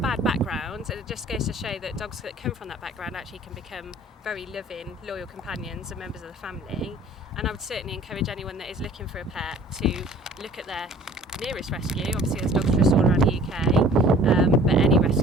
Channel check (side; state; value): both; normal; correlation 0.50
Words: background, and it just goes to show that dogs that come from that background actually can become very loving, loyal companions and members of the family. And I would certainly encourage anyone that is looking for a pet to look at their nearest rescue. Obviously there's Dogs Trust all around the UK, but any